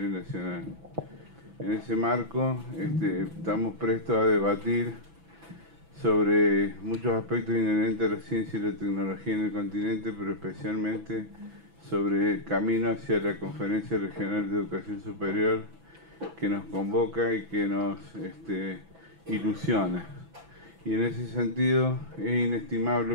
Nacional. En ese marco estamos prestos a debatir sobre muchos aspectos inherentes a la ciencia y la tecnología en el continente, pero especialmente sobre el camino hacia la Conferencia Regional de Educación Superior que nos convoca y que nos ilusiona. Y en ese sentido es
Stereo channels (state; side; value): late; left; 6.0 ms